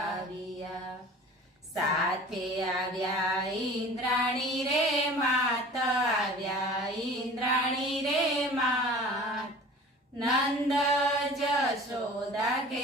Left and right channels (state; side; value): normal; both; correlation 0.42